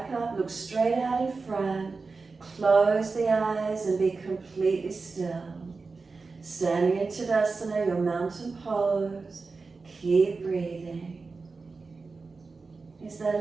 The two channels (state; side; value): quieter; left; 4.2 dB